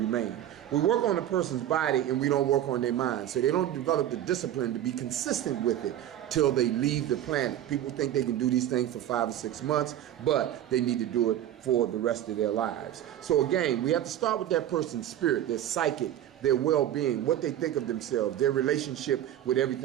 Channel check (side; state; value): left; quieter; 11.8 dB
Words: We work on a person's body and we don't work on their mind. So they don't develop the discipline to be consistent with it till they leave the planet. People think they can do these things for 5 or 6 months, but they need to do it for the rest of their lives. So again, we have to start with that person's spirit, their psychic, their well-being, what they think of themselves, their relationship with